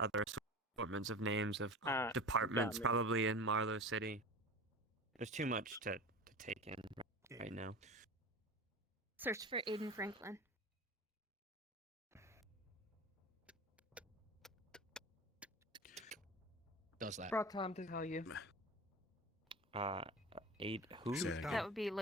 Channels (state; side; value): normal; both; correlation 0.32